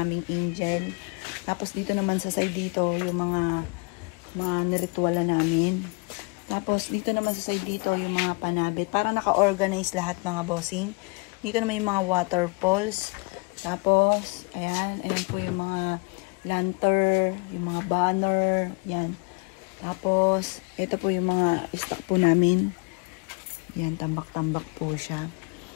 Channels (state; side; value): quieter; right; 30.8 dB